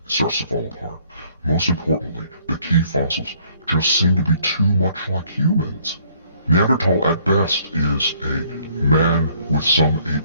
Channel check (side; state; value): both; inverted; correlation -0.63